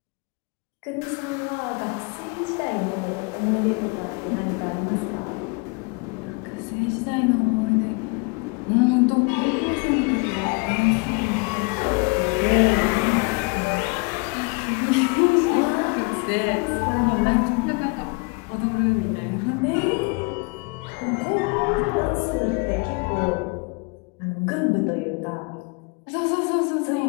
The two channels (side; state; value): right; quieter; 30.8 dB